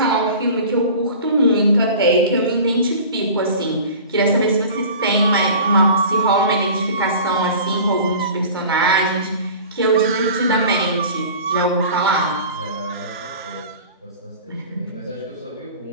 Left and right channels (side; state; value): both; inverted; correlation -0.40